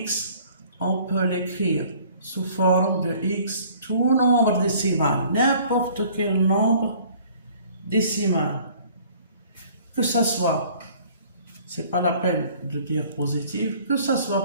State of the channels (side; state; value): both; inverted; correlation -0.54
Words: on peut l'écrire sous forme de x, tout nombre décimal, n'importe quel nombre décimal, que ça soit, c'est pas la peine de dire positif, que ça